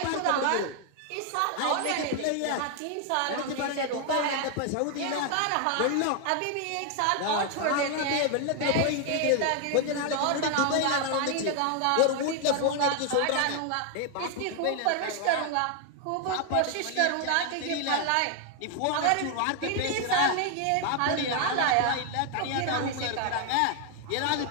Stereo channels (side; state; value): both; different; correlation 0.00